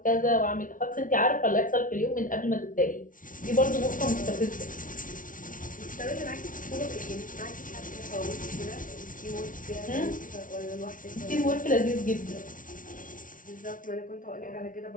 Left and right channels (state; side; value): late; right; 0.38 ms